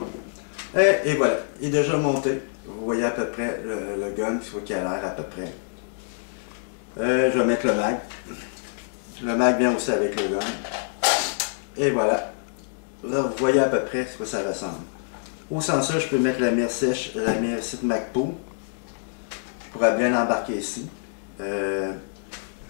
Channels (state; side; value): silent; right; digital silence